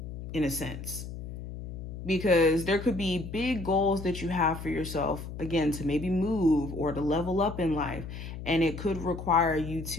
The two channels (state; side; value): noise; left; hum, 9 dB below the sound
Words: in a sense, because there could be big goals that you have for yourself, again, to maybe move or to level up in life, and it could require you